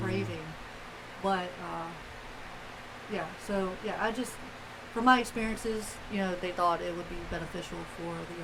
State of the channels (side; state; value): both; identical; correlation 1.00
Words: But, yeah, so, yeah, from my experiences, they thought it would be beneficial for the